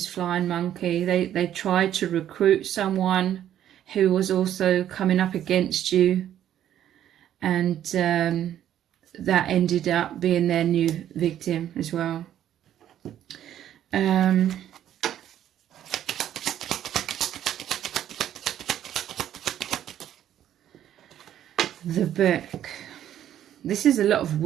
flying monkey. They tried to recruit someone who was also coming up against you, and that ended up being their new victim as well. The book. This is a lot of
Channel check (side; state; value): left; quieter; 11.1 dB